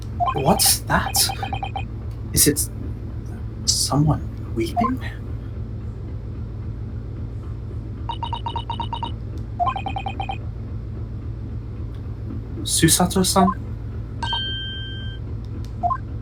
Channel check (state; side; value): identical; both; correlation 1.00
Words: what's that? Is it someone weeping? Susato-san?